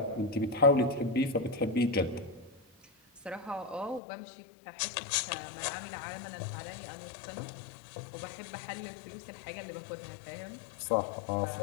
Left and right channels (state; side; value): drops out; right; at 4.0 s